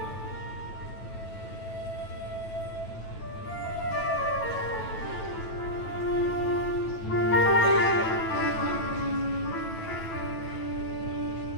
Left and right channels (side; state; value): right; late; 9.2 ms